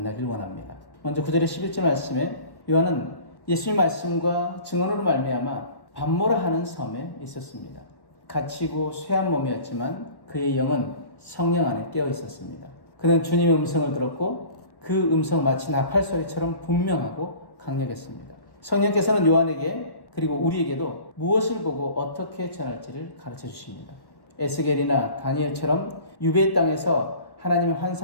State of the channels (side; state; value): right; late; 1.1 ms